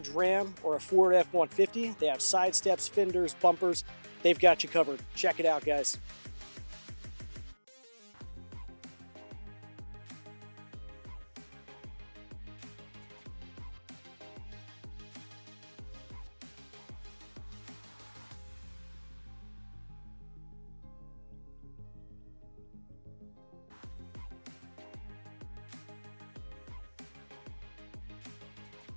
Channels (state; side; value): inverted; both; correlation -1.00